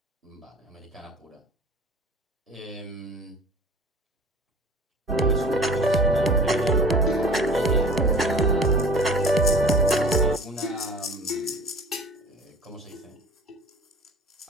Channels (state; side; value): normal; both; correlation 0.43